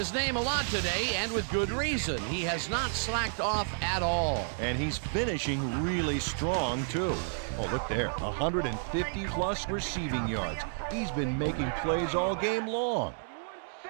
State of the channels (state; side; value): silent; left; digital silence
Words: name a lot today, and with good reason. He has not slacked off at all. And he's finishing really strong, too. Oh, look there, 150-plus receiving yards. He's been making plays all game long.